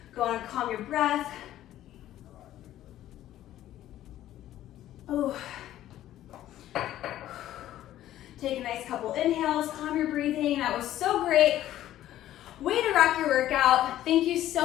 Go on and calm your breath. Oh. Take a nice couple inhales, calm your breathing. That was so great. Way to rock your workout. Thank you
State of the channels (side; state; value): right; quieter; 13.2 dB